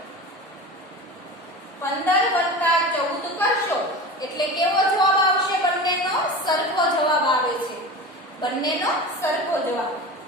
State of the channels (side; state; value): both; normal; correlation 0.31